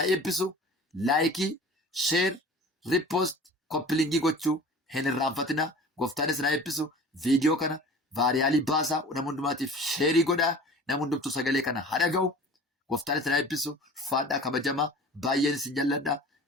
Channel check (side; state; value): both; normal; correlation 0.42